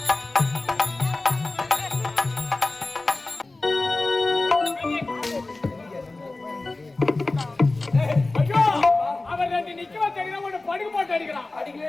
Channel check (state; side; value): quieter; right; 3.2 dB